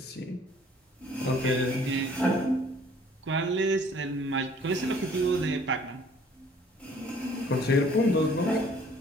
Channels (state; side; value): normal; both; correlation 0.57